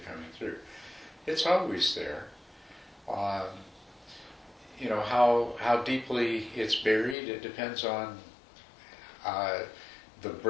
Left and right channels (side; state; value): right; drops out; at 7.2 s